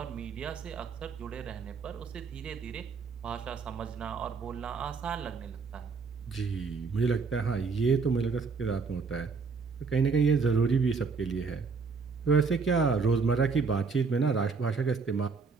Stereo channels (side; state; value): left; quieter; 4.9 dB